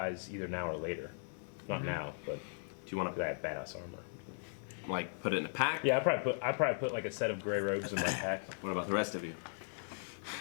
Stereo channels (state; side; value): silent; right; digital silence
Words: either now or later. Not now, but Do you want because I have badass armor. to like put it in a pack? Yeah, I probably put like a set of gray robes in my pack. What about the rest of you?